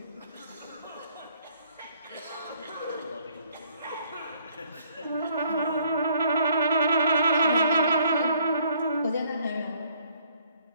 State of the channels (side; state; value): both; inverted; correlation -0.63